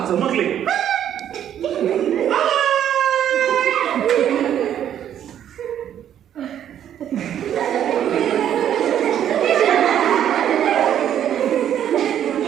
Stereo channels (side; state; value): left; quieter; 10.1 dB